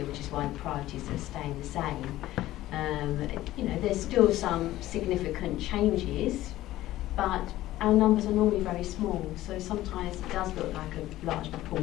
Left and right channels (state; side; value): quieter; right; 15.4 dB